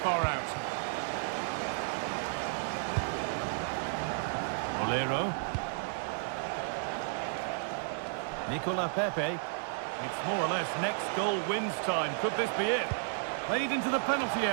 far out. Molero. Nicola Pepe. It's more or less next goal wins time. Could this be it? Played into the penalty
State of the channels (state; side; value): silent; left; digital silence